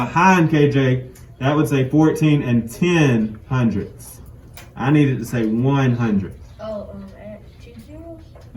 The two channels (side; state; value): both; identical; correlation 1.00